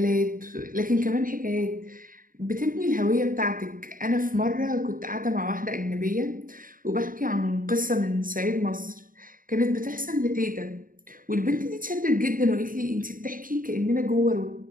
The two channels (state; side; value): late; left; 0.40 ms